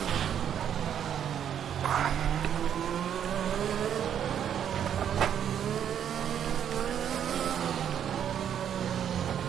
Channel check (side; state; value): left; quieter; 9.2 dB